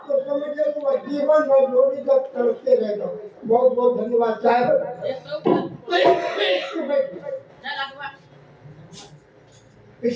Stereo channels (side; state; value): both; identical; correlation 1.00